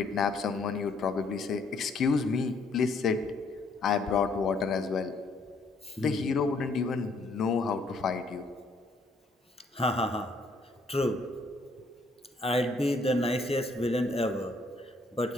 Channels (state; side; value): quieter; right; 3.0 dB